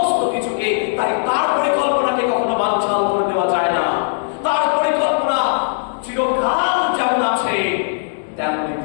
কিছুকে, তাই তার পরিকল্পনাকে কখনো বানচাল করে দেওয়া যায় না। তার পরিকল্পনা চিরকাল যেমন আছে তেমনি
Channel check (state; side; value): silent; right; digital silence